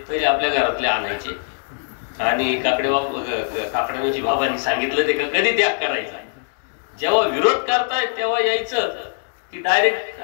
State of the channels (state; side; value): silent; right; 65 dB below the other